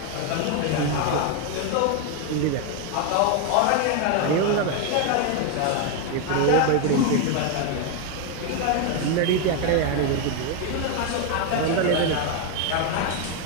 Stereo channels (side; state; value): both; different; correlation 0.01